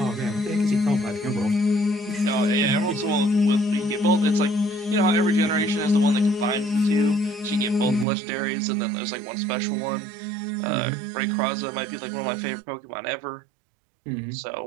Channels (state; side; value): drops out; left; at 8.1 s